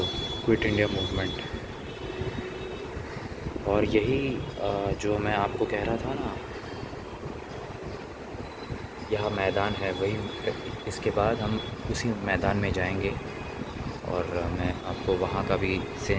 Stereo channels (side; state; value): both; identical; correlation 1.00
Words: क्विट इंडिया मूवमेंट। और यही जो मैं आपको कह रहा था ना, यह मैदान है, वही। इसके बाद हम उसी मैदान में जाएंगे और मैं आपको वहाँ का भी